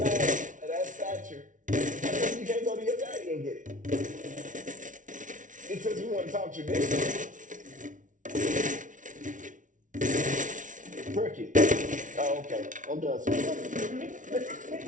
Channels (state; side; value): late; left; 0.37 ms